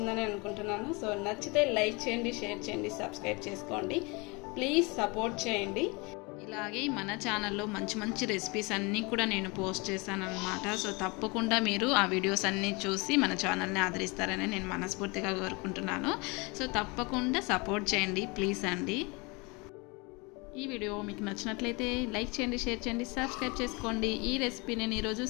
అనుకుంటున్నాను. సో నచ్చితే లైక్ చేయండి, షేర్ చేయండి, సబ్స్క్రైబ్ చేసుకోండి. ప్లీజ్ సపోర్ట్ చేయండి. ఇలాగే మన ఛానల్లో మంచి మంచి రెసిపీస్ అన్నీ కూడా నేను పోస్ట్ చేశాను అనమాట. సో తప్పకుండా మీరు ఆ వీడియోస్ అన్నీ చూసి మన ఛానల్ని ఆదరిస్తారని నేను మనస్ఫూర్తిగా కోరుకుంటున్నాను. సో తప్పకుండా సపోర్ట్ చేయండి ప్లీజ్ అండి. ఈ వీడియో మీకు నచ్చినట్లయితే లైక్ చేయండి, షేర్ చేయండి, సబ్స్క్రైబ్ చేసుకోండి. ఈ రెసిపీ నేను ఈరోజు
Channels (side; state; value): right; quieter; 27.9 dB